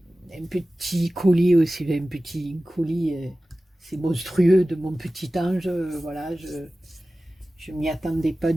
un petit colis aussi, un petit colis, c'est monstrueux, de mon petit ange. Voilà, je m'y attendais pas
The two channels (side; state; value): both; normal; correlation 0.96